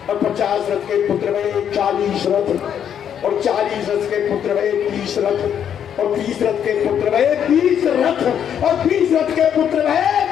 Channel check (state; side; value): quieter; right; 8.9 dB